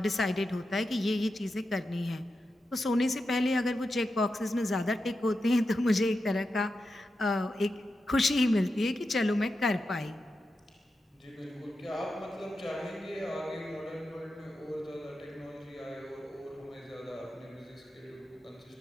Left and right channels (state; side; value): normal; both; correlation 0.89